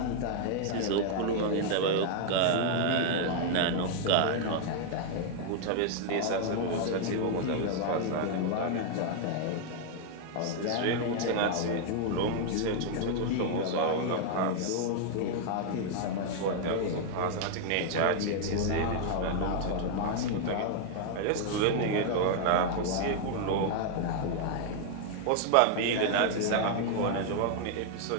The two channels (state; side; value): different; both; correlation 0.00